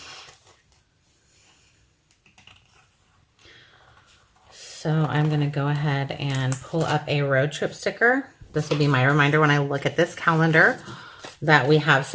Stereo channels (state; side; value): identical; both; correlation 1.00